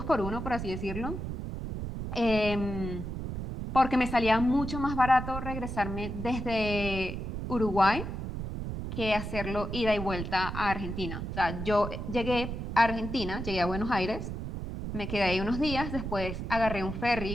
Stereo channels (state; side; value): noise; right; rumble, 5 dB below the sound